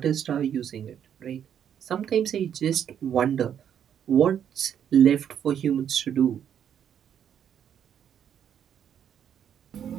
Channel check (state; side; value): quieter; left; 9.0 dB